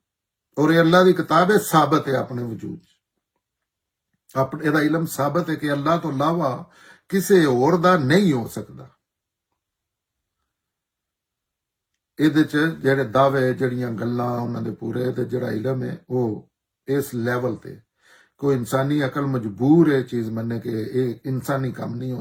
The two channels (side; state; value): both; identical; correlation 1.00